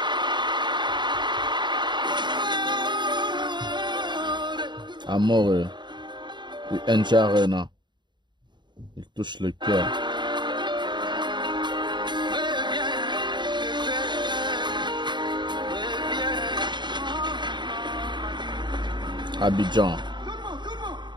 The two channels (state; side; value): late; left; 0.22 ms